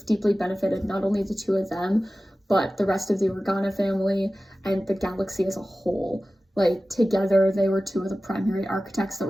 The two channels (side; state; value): both; normal; correlation 0.96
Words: deeply benefited not only the two of them, but the rest of the Organa family and the galaxy as a whole. Like, together, they were two of the primary architects that